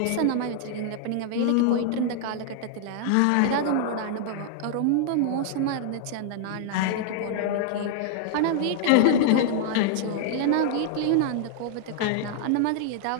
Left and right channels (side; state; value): both; different; correlation -0.01